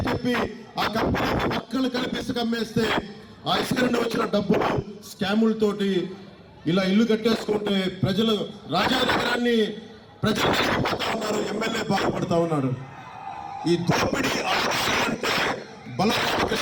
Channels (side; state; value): both; identical; correlation 1.00